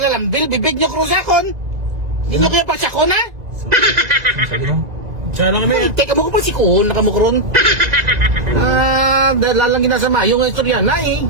bibig nyo kro sa akon. Hindi nyo kaya pagsakon ha? Sana kami. Teka mo ko pa si Kuhon, nakamukron. Dahil lalang ginasama yung istorya na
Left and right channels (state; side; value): late; left; 1.9 ms